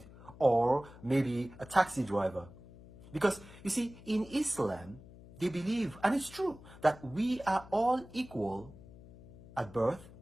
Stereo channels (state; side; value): noise; left; hum, 19 dB below the sound